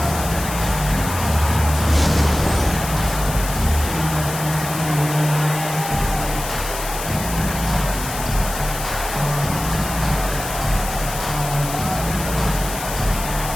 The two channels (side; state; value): left; noise; hiss, 8 dB below the sound